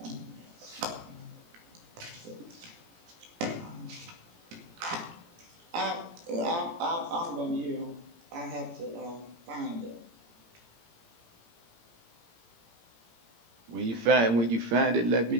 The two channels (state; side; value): late; left; 17 ms